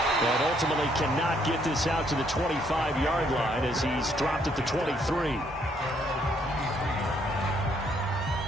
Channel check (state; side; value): normal; both; correlation 0.69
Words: ultimately cannot get this out to the 25-yard line as he's dropped at the 23.